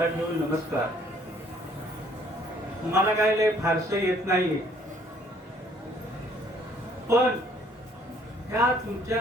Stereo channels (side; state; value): both; normal; correlation 0.61